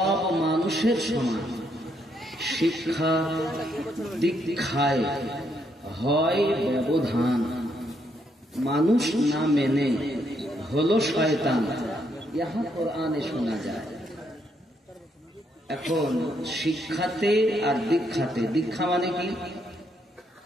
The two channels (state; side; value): normal; both; correlation 0.75